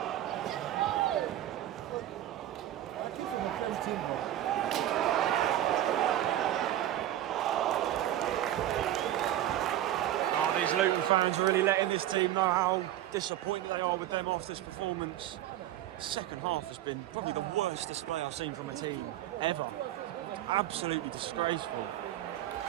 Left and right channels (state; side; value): quieter; left; 12.9 dB